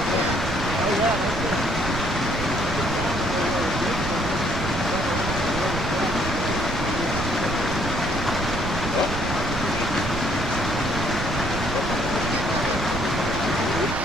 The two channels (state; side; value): noise; right; rumble, 4 dB below the sound